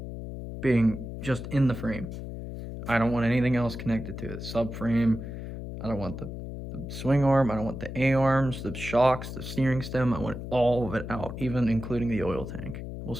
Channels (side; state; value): left; noise; hum, 8 dB below the sound